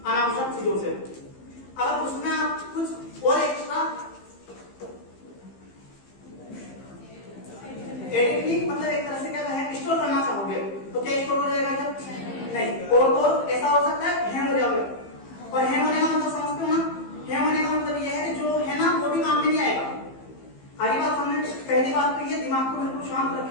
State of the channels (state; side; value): late; right; 15 ms